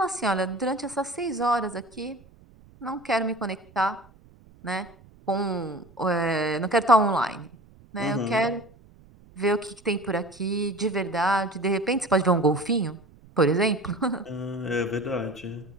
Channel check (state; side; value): noise; right; rumble, 25 dB below the sound